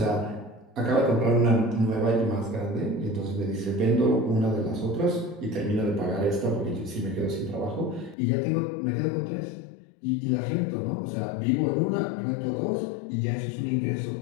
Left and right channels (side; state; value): right; drops out; at 8.2 s